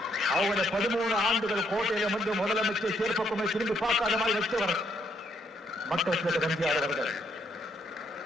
அவருடைய 13 ஆண்டுகள் கோட்டையில வந்து முதலமைச்சர் சேர்ப்பக்குமே திரும்பி பார்க்காத மாதிரி வச்சவர் மக்கள் எம்ஜிஆர் அவர்கள்.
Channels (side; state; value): both; normal; correlation 0.73